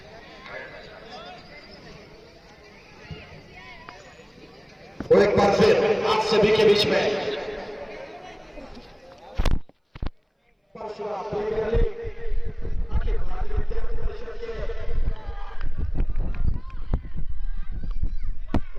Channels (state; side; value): identical; both; correlation 1.00